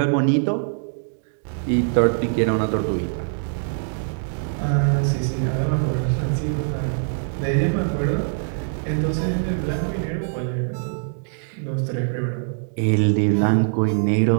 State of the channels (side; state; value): left; silent; digital silence